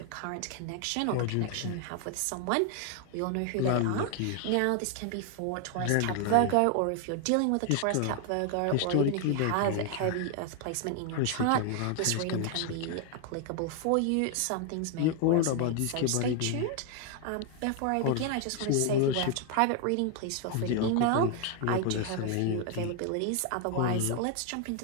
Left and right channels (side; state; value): both; different; correlation 0.00